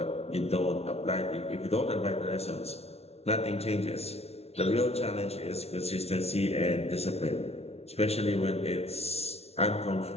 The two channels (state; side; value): late; right; 0.30 ms